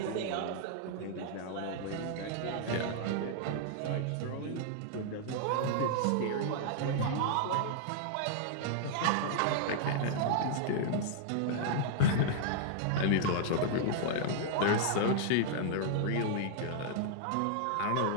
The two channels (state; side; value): different; both; correlation -0.01